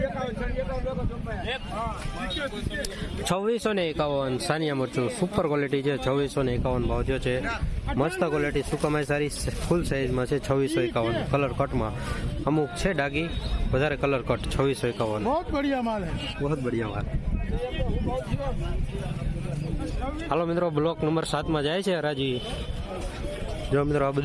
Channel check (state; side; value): identical; both; correlation 1.00